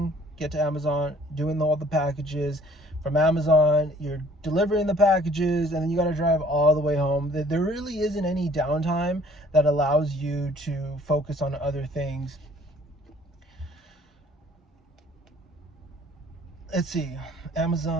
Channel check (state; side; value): normal; both; correlation 0.56